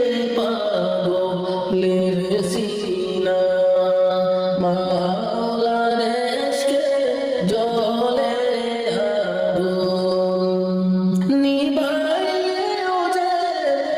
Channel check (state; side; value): identical; both; correlation 1.00